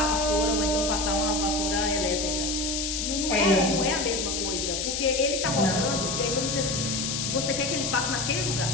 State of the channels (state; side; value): noise; left; hiss, 1 dB below the sound